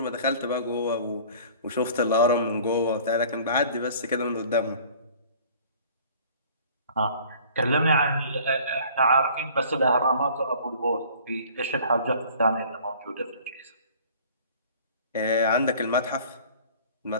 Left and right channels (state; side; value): inverted; both; correlation -0.49